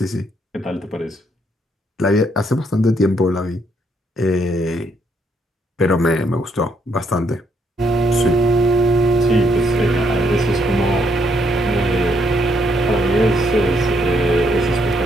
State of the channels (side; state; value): both; normal; correlation 0.73